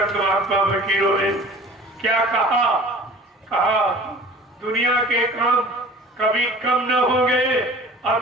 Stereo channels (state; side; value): normal; both; correlation 0.44